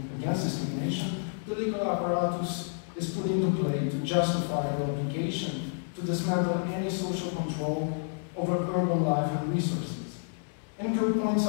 Against Discrimination. The legal apparatus is put into play to justify the obligation to dismantle any social control over urban life and resources. Enikő points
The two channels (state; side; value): silent; right; digital silence